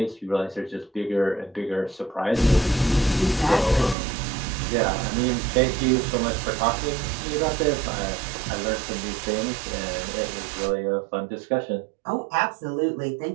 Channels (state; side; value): drops out; left; at 4.0 s